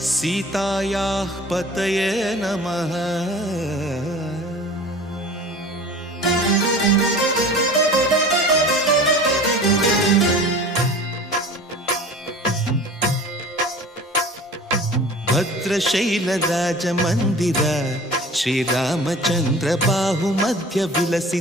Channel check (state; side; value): normal; both; correlation 0.41